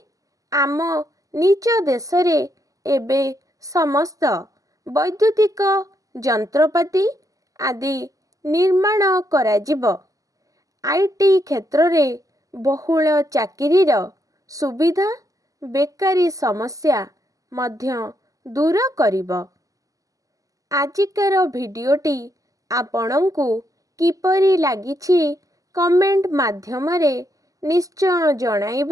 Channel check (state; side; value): late; left; 0.17 ms